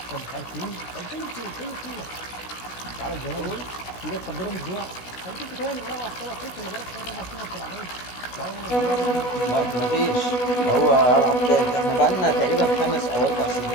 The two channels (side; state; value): right; late; 16 ms